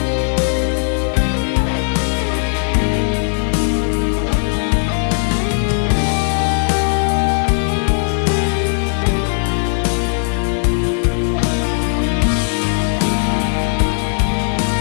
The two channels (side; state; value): right; silent; digital silence